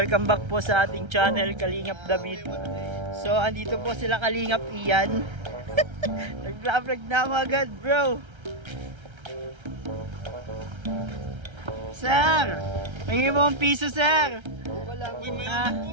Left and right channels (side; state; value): left; late; 1.3 ms